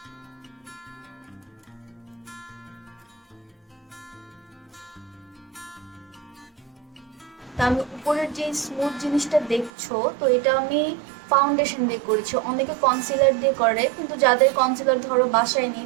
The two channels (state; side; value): drops out; left; at 9.7 s